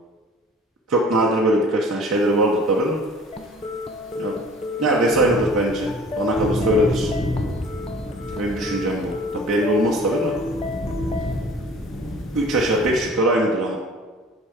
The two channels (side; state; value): both; normal; correlation 0.48